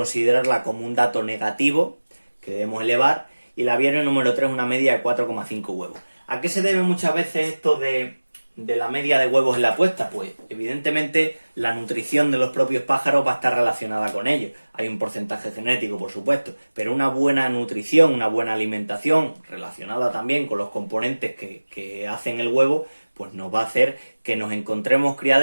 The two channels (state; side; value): inverted; both; correlation -1.00